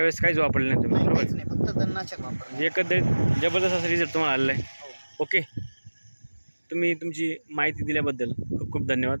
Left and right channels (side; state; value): both; inverted; correlation -1.00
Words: काहीच वापरले नाही तुम्ही? बरोबर। काहीच नाही, फक्त तणनाशक वापरलं। म्हणजे एकंदरीत जबरदस्त असा रिझल्ट तुम्हाला आलेला आहे। ओके, तुम्ही तुमची माहिती दिल्याबद्दल खूप खूप धन्यवाद।